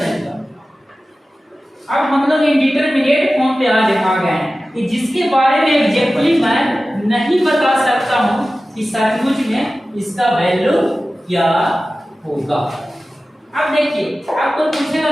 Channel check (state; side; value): normal; both; correlation 0.95